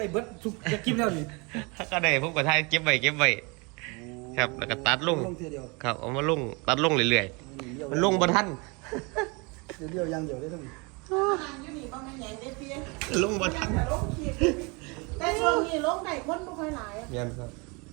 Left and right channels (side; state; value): left; quieter; 29.2 dB